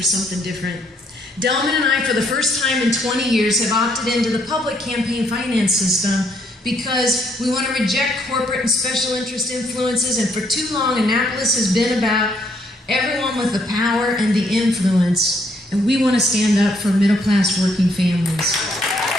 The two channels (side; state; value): both; normal; correlation 0.70